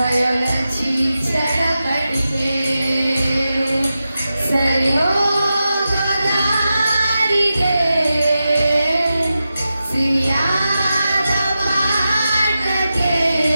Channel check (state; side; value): inverted; both; correlation -0.91